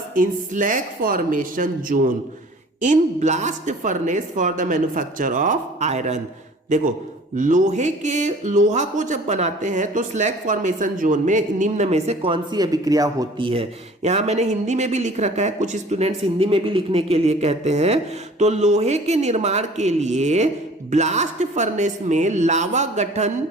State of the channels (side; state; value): both; normal; correlation 0.48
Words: in slag formation zone in blast furnace for the manufacture of iron? देखो, लोहा को जब बनाते हैं तो स्लैग फॉर्मेशन जोन में निम्न में से कौन सी अभिक्रिया होती है। यहां मैंने हिंदी में भी लिख रखा है, कुछ स्टूडेंट्स हिंदी में भी लिखने के लिए कहते हैं। तो लोहे के निर्माण के लिए ब्लास्ट फर्नेस में लावा गठन